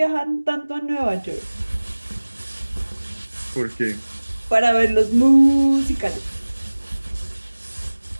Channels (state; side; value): inverted; both; correlation -1.00